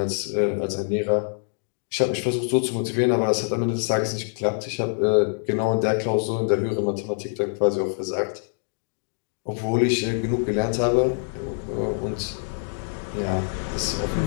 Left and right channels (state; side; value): silent; right; digital silence